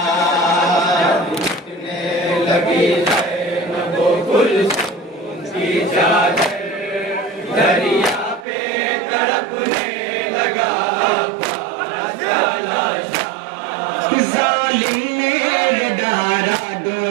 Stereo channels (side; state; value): left; drops out; at 8.5 s